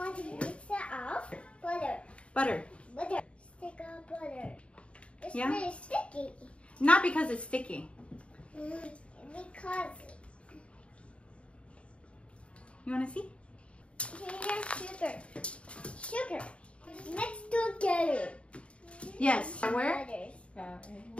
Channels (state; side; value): late; right; 0.061 ms